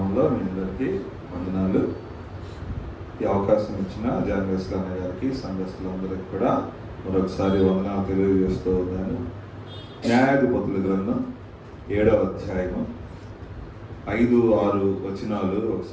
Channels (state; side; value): identical; both; correlation 1.00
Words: మీ అందరికీ వందనాలు. ఈ అవకాశం ఇచ్చిన జాన్వేస్ అన్నయ్య గారికి, సంఘస్థులందరికీ కూడా మరొకసారి వందనాలు తెలియజేస్తూ ఉన్నాను. న్యాయాధిపతుల గ్రంథం 7వ అధ్యాయము 5-6 వచనాలు